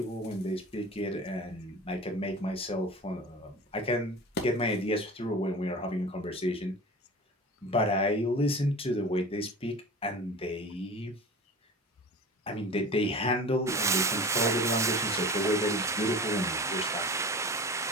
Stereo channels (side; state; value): both; normal; correlation 0.36